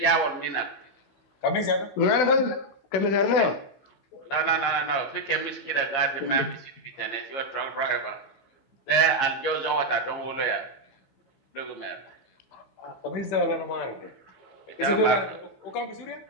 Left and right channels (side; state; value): right; late; 15 ms